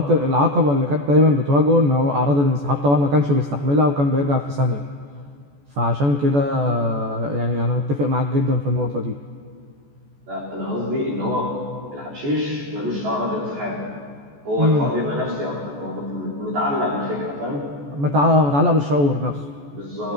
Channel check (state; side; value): late; left; 14 ms